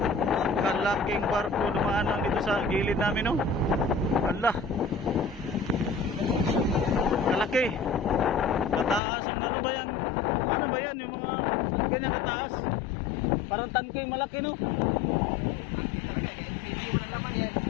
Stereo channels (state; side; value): drops out; right; at 9.0 s